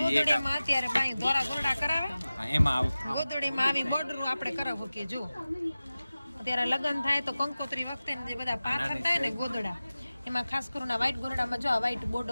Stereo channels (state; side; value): inverted; both; correlation -0.96